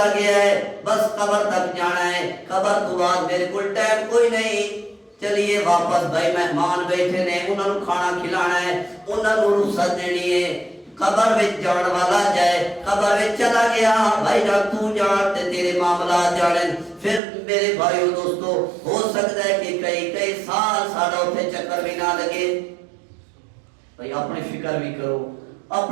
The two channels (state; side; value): drops out; left; at 17.2 s